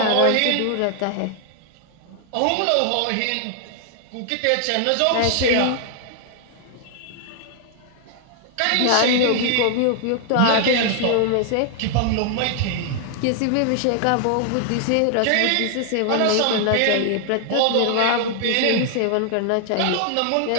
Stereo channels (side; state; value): both; different; correlation 0.00